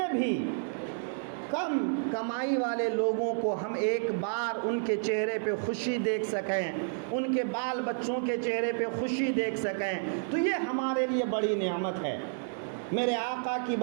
بھی کم کمائی والے لوگوں کو ہم ایک بار ان کے چہرے پہ خوشی دیکھ سکیں، ان کے بال بچوں کے چہرے پہ خوشی دیکھ سکیں، تو یہ ہمارے لیے بڑی نعمت ہے۔ میرے آقا کی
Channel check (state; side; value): silent; left; 57 dB below the other